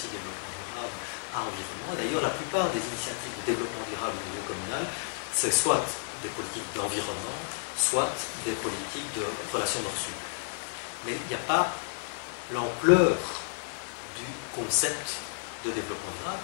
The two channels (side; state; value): right; silent; 57 dB below the other